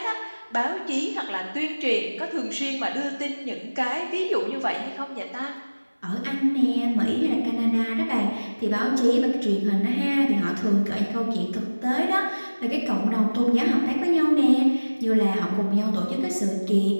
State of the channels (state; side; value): inverted; both; correlation -1.00